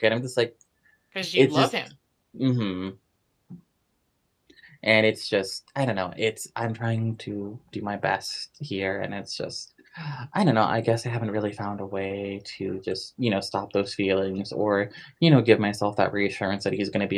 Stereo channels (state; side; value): identical; both; correlation 1.00